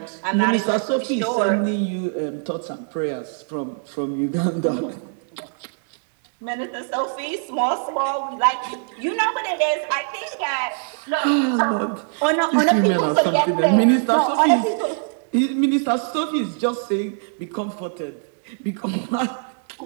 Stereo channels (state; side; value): silent; left; digital silence